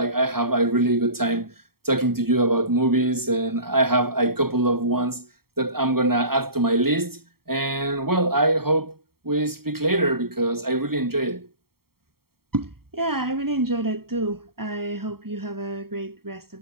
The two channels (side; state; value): left; late; 0.94 ms